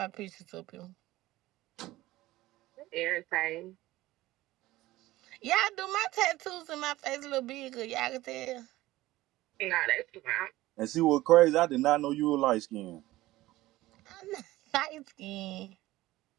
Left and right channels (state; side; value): quieter; left; 17.3 dB